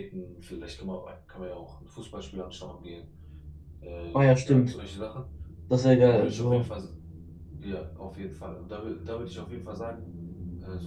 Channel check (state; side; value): identical; both; correlation 1.00